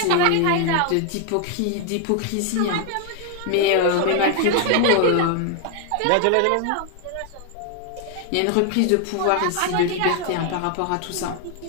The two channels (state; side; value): different; both; correlation 0.00